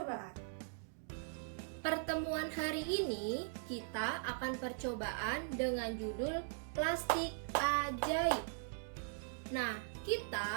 Pertemuan hari ini kita akan percobaan dengan judul plastik ajaib. Nah,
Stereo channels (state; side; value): silent; left; digital silence